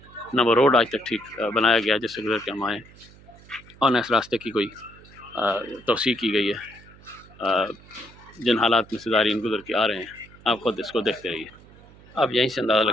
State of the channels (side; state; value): right; noise; hum, 23 dB below the sound